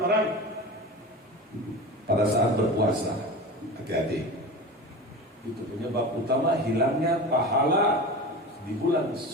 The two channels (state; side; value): normal; both; correlation 0.30